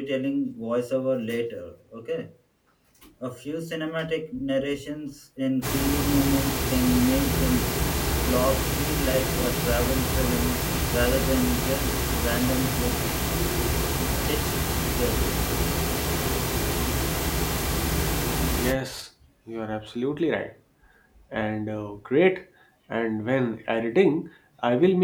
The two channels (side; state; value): both; identical; correlation 1.00